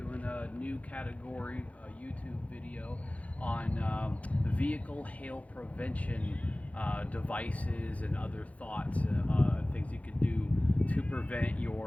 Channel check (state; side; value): late; right; 0.066 ms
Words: a new category YouTube video on vehicle hail prevention devices and other thoughts, things you could do to prevent